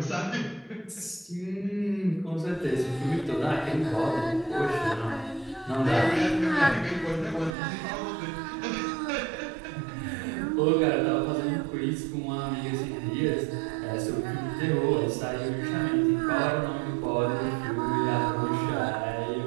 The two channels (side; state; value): left; drops out; at 7.6 s